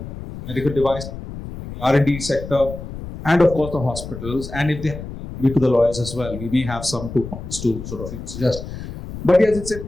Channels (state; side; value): noise; left; rumble, 10 dB below the sound